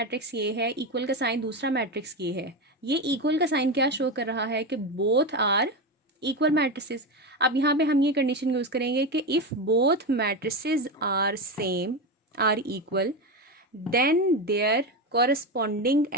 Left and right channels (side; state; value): both; normal; correlation 0.16